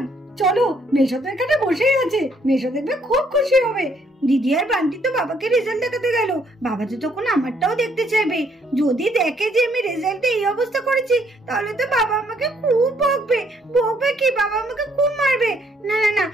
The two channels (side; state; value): both; normal; correlation 0.68